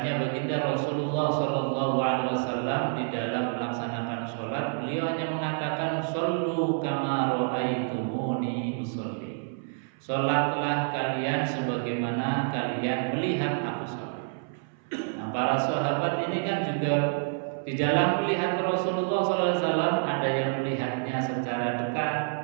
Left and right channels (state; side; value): silent; left; 59 dB below the other